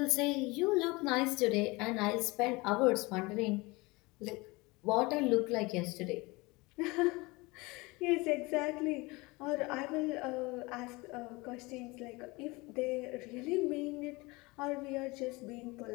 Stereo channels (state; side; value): quieter; right; 23.9 dB